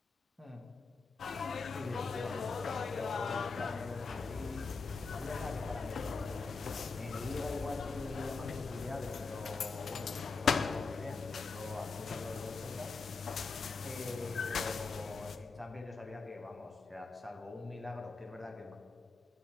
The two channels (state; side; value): quieter; right; 4.4 dB